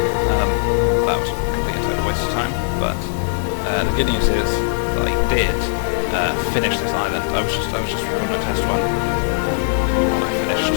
that was a complete and total waste of time. But the good news is that I did finish this island. I was just recording a test one while I finished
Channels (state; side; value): silent; right; 63 dB below the other